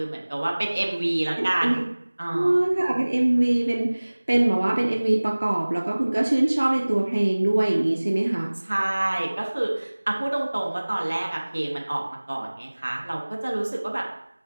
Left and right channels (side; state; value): both; inverted; correlation -1.00